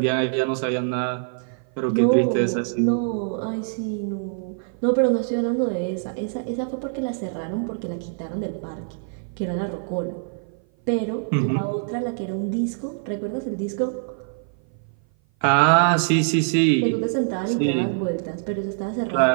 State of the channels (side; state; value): left; silent; 56 dB below the other